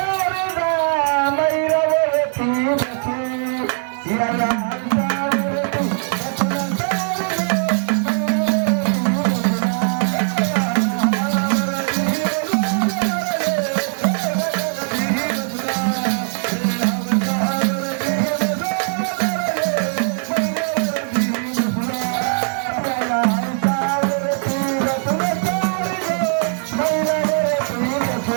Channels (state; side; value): silent; left; 58 dB below the other